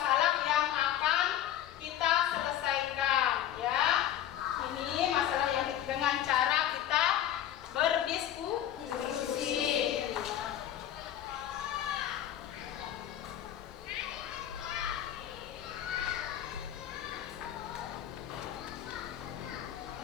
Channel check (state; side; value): quieter; right; 11.4 dB